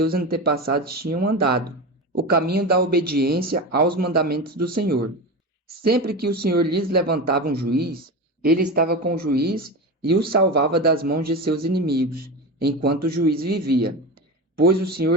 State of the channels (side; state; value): both; normal; correlation 0.23